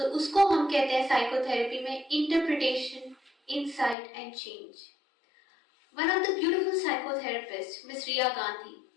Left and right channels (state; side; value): drops out; right; at 4.0 s